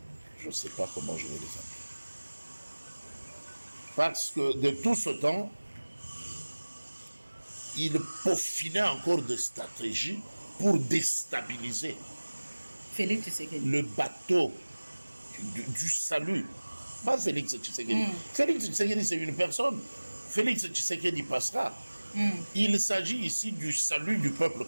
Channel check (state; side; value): inverted; both; correlation -1.00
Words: ne sais pas comment je vais les appeler. Parce que de tout ce temps, ils peaufinaient encore des stratégies pour déstabiliser le bateau du salut. Pas Félix Tshisekedi. Félix Tshisekedi, c'est une personne. Félix Tshisekedi passera. Il s'agit ici du salut du peuple